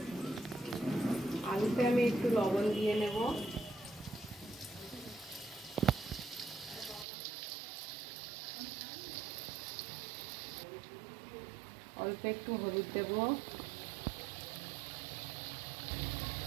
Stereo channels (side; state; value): left; drops out; at 7.1 s